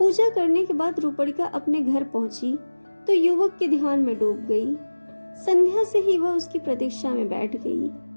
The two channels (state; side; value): inverted; both; correlation -1.00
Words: करने के बाद रूपड़िका अपने घर पहुंची तो युवक के ध्यान में डूब गई। संध्या से ही वह उसकी प्रतीक्षा में बैठ गई।